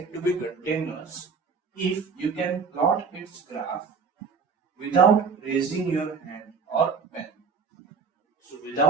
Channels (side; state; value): left; quieter; 5.3 dB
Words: to be continuous if you can plot its graph without raising your hand or pen. So